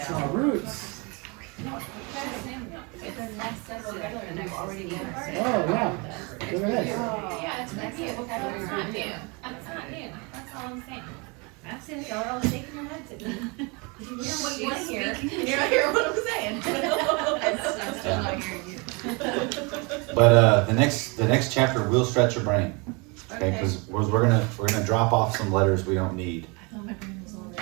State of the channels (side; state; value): left; quieter; 29.9 dB